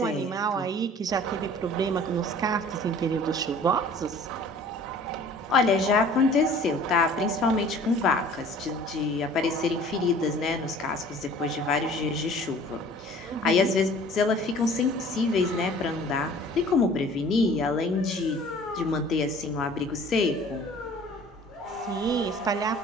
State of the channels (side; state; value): both; normal; correlation 0.49